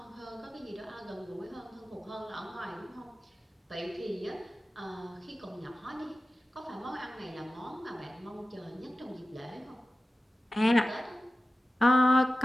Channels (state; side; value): normal; both; correlation 0.95